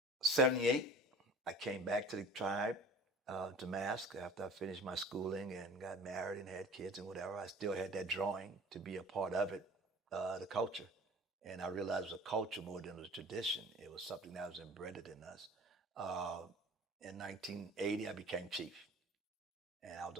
I came back to the tribe to mask after I finished my schooling and got married and had kids and whatever. I still had that drawing to be a part of it, the culture. And I realized it was a culture more than it was a tradition. It was something that was embedded in us. Uh, in 1980, I became chief. And I was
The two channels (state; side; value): normal; both; correlation 0.42